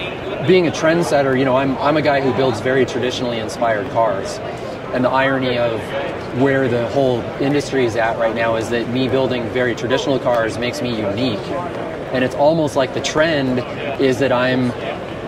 Being a trendsetter, I'm a guy who builds very traditionally inspired cars. And the irony of where the whole industry is at right now is that me building very traditional cars makes me unique. And it's almost like the trend is that I'm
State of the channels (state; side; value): identical; both; correlation 1.00